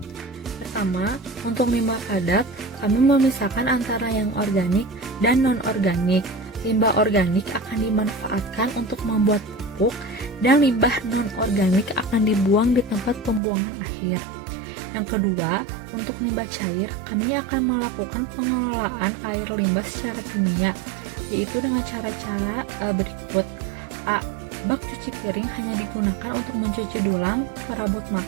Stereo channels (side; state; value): left; drops out; at 13.4 s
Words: Pertama, untuk limbah padat, kami memisahkan antara yang organik dan non-organik. Limbah organik akan dimanfaatkan untuk membuat pupuk dan limbah non-organik akan dibuang di tempat pembuangan akhir. Yang kedua, untuk limbah cair, kami akan melakukan pengelolaan air limbah secara kimia, yaitu dengan cara-cara berikut. A. Bak cuci piring hanya digunakan untuk mencuci dulang, perabot